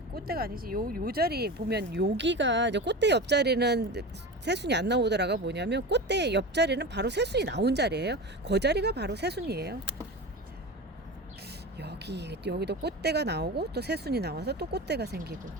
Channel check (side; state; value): both; normal; correlation 0.28